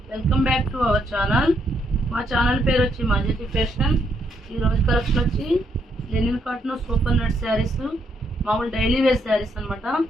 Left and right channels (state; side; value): normal; both; correlation 0.75